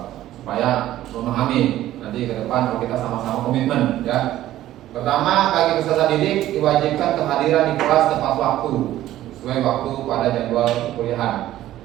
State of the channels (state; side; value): quieter; left; 13.9 dB